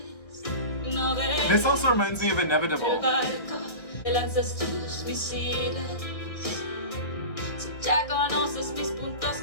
This also reminds me of Inevitable.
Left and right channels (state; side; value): late; right; 1.5 ms